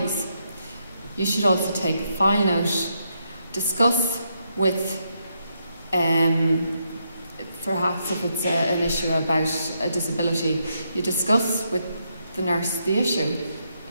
You should also take a file note, discuss with perhaps if it's an issue about a disability, you discuss with the nurse the issue.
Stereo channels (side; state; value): both; inverted; correlation -0.79